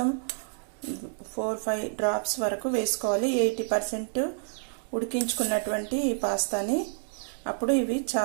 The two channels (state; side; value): silent; left; digital silence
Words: 4-5 డ్రాప్స్ వరకు వేసుకోవాలి. 80% ఉడికించుకున్నటువంటి ఈ పాస్తాని. అప్పుడు ఇవి